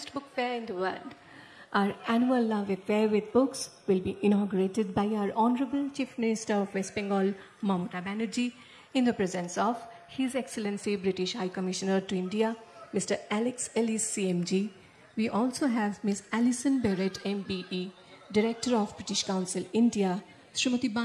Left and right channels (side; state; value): both; identical; correlation 1.00